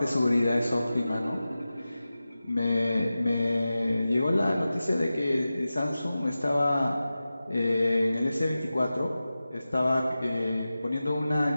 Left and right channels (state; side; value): inverted; both; correlation -0.95